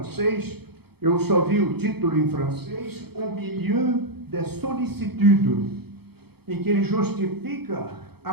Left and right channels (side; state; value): left; late; 0.96 ms